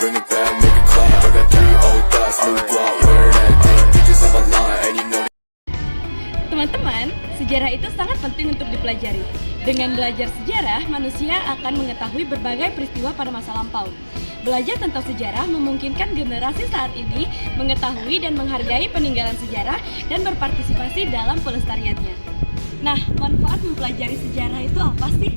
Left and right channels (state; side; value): inverted; both; correlation -1.00